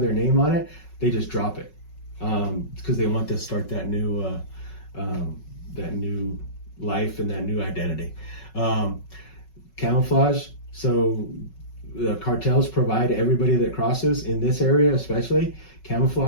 their name on it. They just drop it because they want to start that new life and that new identity. Camouflage. So the cartels provide everybody that crosses in this area, especially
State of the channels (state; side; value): late; right; 5.4 ms